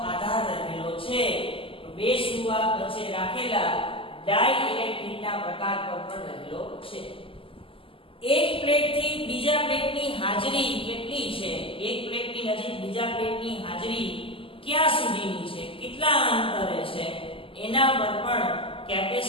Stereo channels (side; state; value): right; late; 0.26 ms